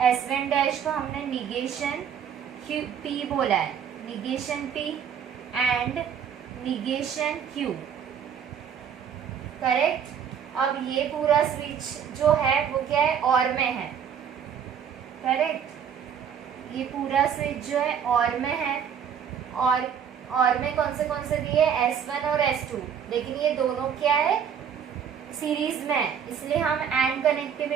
S1 डैश को हमने निगेशन P बोला है, negation P and negation Q, correct. अब ये पूरा स्विच जो है वो क्या है, और में है, करेक्ट, ये पूरा स्विच जो है और में है, और में कौन से दिए, S1 और S2, लेकिन ये दोनों क्या है, सीरीज में, इसलिए हम एंड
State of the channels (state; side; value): quieter; left; 8.0 dB